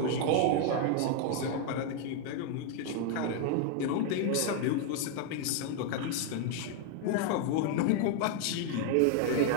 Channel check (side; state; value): both; different; correlation 0.01